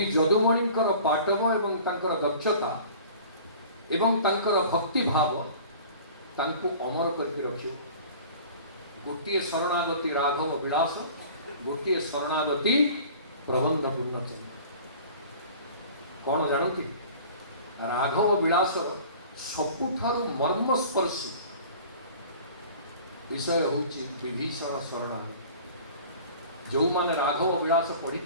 जदुमणिंकर पाटव एवं तांकर दक्षता एवं तांकर भक्ति भाव तांको अमर करके रखियो। गोटिए शरणागति राघव विलास गोटिए शरणागति प्रबंध पूर्णचंद्र कौन जानती राघव विलास सबुठारु मर्मस्पर्शी विषय होची विभीषण शरणागति। जो माने राघव विलास पढ़ी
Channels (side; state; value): both; inverted; correlation -0.44